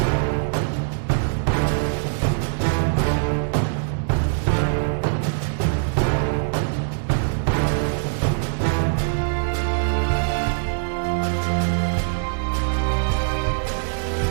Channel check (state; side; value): silent; left; digital silence